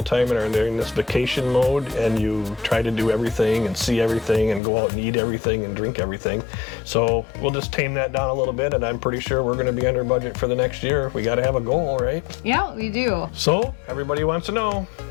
and are in this vacation mode and you try to do everything and see everything and go out and eat everything and drink everything. So we'll just tame that down a little bit, and I'm pretty sure we're going to be under budget for the next year. We got to have a goal, right? Yeah, we do. So everybody wants to know,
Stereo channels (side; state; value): right; drops out; at 4.6 s